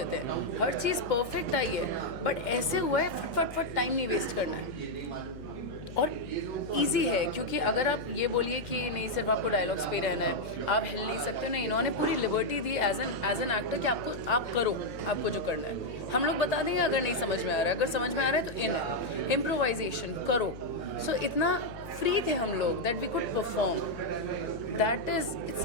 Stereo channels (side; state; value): left; noise; hum, 14 dB below the sound